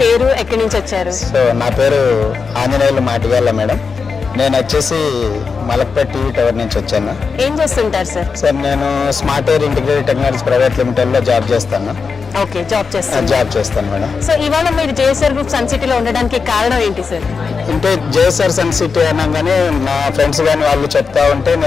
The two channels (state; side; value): quieter; right; 5.1 dB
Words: పేరు, ఎక్కడి నుంచి వచ్చారు? సో నా పేరు ఆంజనేయులు మాటిగాల మేడం. నేను వచ్చేసి మలక్పేట్ టీవీ టవర్ నుంచి వచ్చాను. ఏం చేస్తుంటారు సార్? సార్ నేను smart air integrated technologies private లిమిటెడ్లో జాబ్ చేస్తాను. ఓకే, జాబ్ చేస్తాను. జాబ్ చేస్తాను మేడం. సో ఇవాళ మీరు జేఎస్ఆర్ గ్రూప్ సన్ సిటీలో ఉండడానికి కారణం ఏంటి సార్? అంటే జేఎస్ఆర్ సన్ సిటీ అనగానే నా ఫ్రెండ్స్ కానీ వాళ్ళు చెప్తా ఉంటే